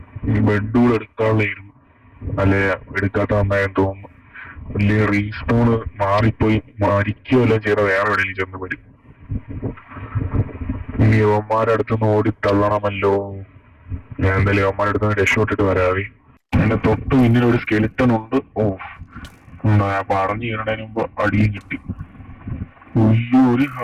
ഈ ബെഡൂടെ എടുക്കാനുള്ളായിരുന്നു, അല്ലെ എടുക്കാത്ത നന്നായെന്ന് തോന്നുന്നു. വലിയ റീസ്പോണ് മാറിപ്പോയി മരിക്കുകയല്ലോ ചെയ്ത വേറെ എവിടെയെങ്കിലും ചെന്ന് വരും. ഇനി യവന്മാരുടെ അടുത്തുനിന്ന് ഓടി തള്ളണമല്ലോ. ഞാൻ എന്തായാലും യവന്മാരുടെ അടുത്ത് രക്ഷപ്പെട്ടിട്ട് വരാവേ. എന്റെ തൊട്ട് പിന്നിൽ ഒരു സ്കെലിറ്റൺ ഉണ്ട്. ഓ, ഞാൻ പറഞ്ഞു കയറണതിന് മുമ്പ് അടിയും കിട്ടി. ഉയ്യോ, ഒരു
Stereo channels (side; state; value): both; identical; correlation 1.00